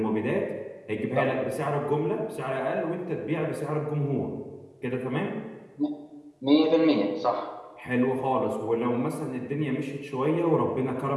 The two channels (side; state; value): both; identical; correlation 1.00